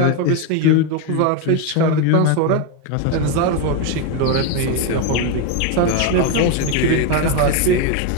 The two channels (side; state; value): both; different; correlation 0.02